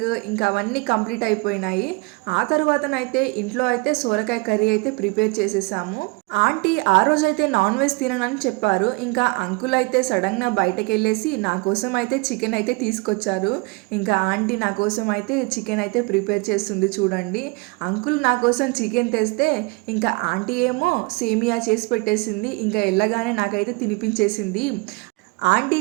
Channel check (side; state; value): left; quieter; 27.0 dB